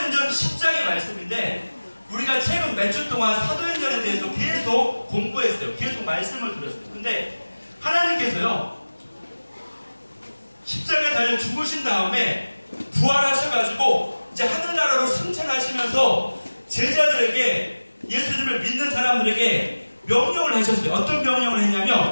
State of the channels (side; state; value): both; inverted; correlation -1.00